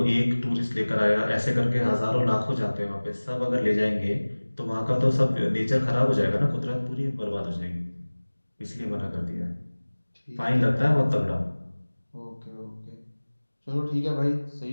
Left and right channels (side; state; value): both; inverted; correlation -1.00